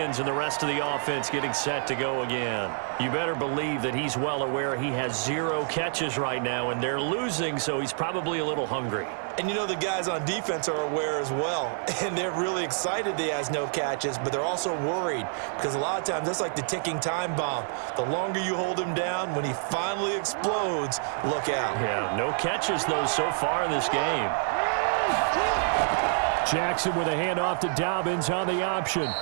and the rest of the offense getting set to go again. You better believe that he's well aware he has 0 catches right now, and they're losing, so he's probably a little hungry. And you know the guys on defense are aware as well, and they're really excited that he has no catches, but they're also worried because a lot of times that's like the ticking time bomb. The longer you hold him down, when he finally explodes, look out. Yeah, no catches, though, so far in this game. Jackson with a handoff to Dobbins on the option.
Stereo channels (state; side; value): silent; left; 60 dB below the other